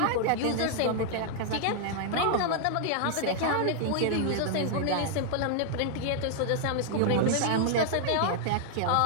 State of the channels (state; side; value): different; both; correlation -0.01